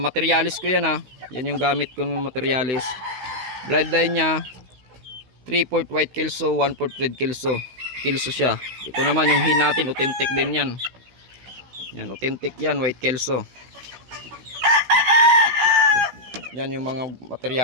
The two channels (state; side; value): late; left; 16 ms